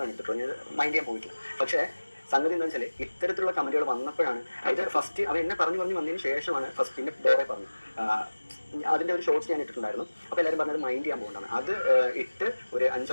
ഇട്ടിട്ടുള്ളൂ, ഞാൻ മൈൻഡ് ചെയ്യാൻ പോയിട്ടില്ല. പക്ഷേ സംഗതി എന്താ വെച്ചാൽ ഇത്തരത്തിലുള്ള കമന്റുകൾ വന്നപ്പോഴാണ്, അതായത് ഫസ്റ്റ് അവൻ എന്നെ പറഞ്ഞു വന്നതിന് ശേഷമാണ് ഫസ്റ്റ് പിന്നെ വേറെ പറഞ്ഞു അതിൻ്റെ ഒരു ഷോർട്സ് ഞാൻ ഇട്ടിട്ടുണ്ടായിരുന്നു. അപ്പോൾ എല്ലാവരും പറഞ്ഞത് മൈൻഡ് ചെയ്യാൻ പോകേണ്ടതാണ്. അത് ഇട്ട് ഒരു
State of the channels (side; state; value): both; inverted; correlation -1.00